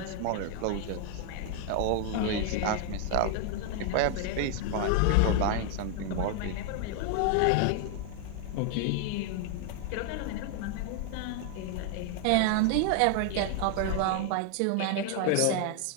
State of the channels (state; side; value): different; both; correlation 0.00